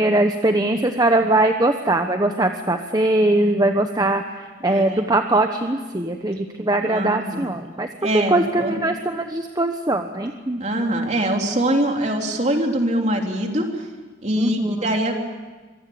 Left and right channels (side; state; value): both; normal; correlation 0.55